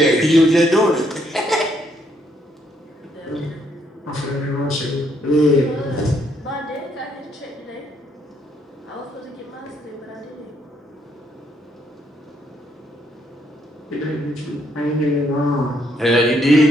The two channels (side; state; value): both; normal; correlation 0.72